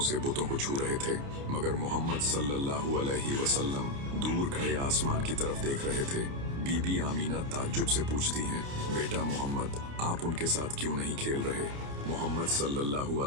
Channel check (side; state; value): left; late; 29 ms